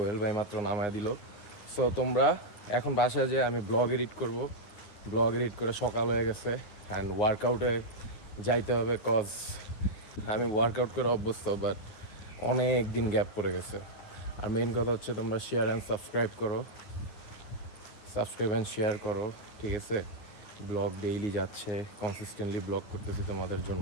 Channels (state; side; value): late; right; 9.7 ms